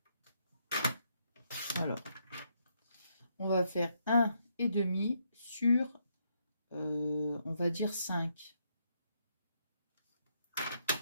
Alors, on va faire 1,5 sur, on va dire 5.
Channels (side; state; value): both; inverted; correlation -0.76